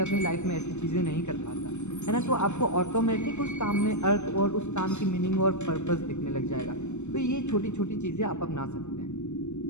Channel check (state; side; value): late; right; 0.83 ms